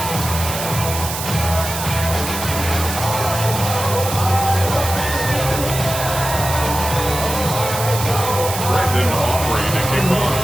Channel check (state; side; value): noise; right; hiss, 6 dB below the sound